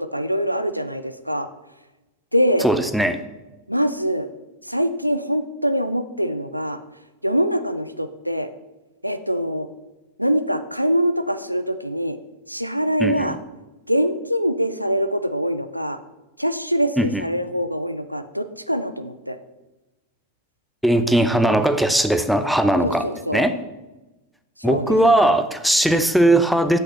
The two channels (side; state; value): both; normal; correlation 0.04